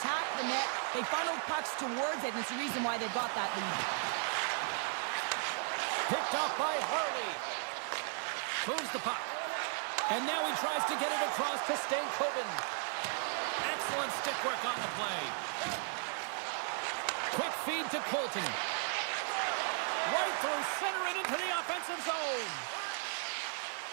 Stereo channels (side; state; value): left; silent; 54 dB below the other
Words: the net. They funneled pucks towards it, and it's the reason why they've got that lead. Picked up by Harley. Moves the puck. And now he tries to get it across to Stankoven. Excellent stick work on the play. Quick feed to Colton. Right through center and into the offensive zone.